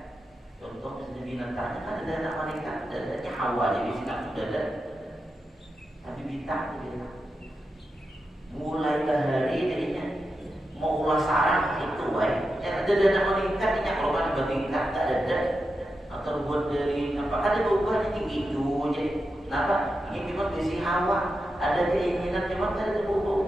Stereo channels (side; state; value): both; normal; correlation 0.89